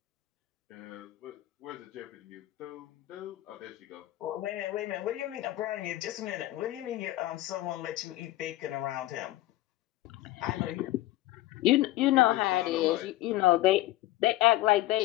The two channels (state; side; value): quieter; right; 16.5 dB